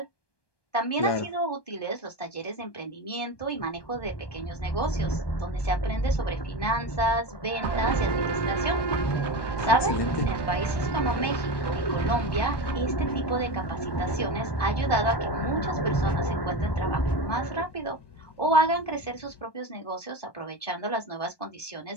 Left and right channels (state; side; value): late; right; 1.2 ms